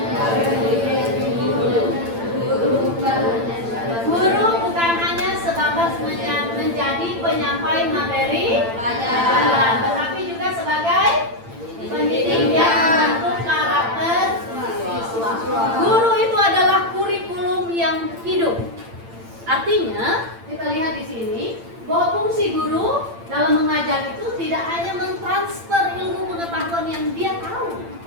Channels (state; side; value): late; left; 8.8 ms